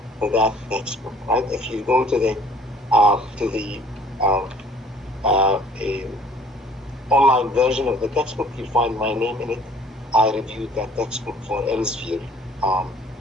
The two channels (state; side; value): normal; both; correlation 0.54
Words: for that textbook, right? If you go to the online version of the textbook, you'll find my name in it. I reviewed that textbook for Elsevier